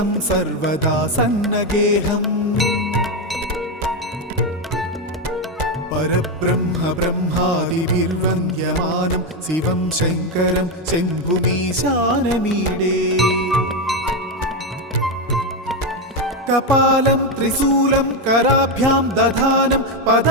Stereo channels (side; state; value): both; normal; correlation 0.08